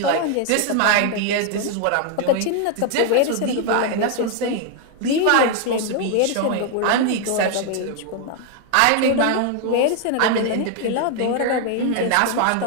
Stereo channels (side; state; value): both; different; correlation 0.00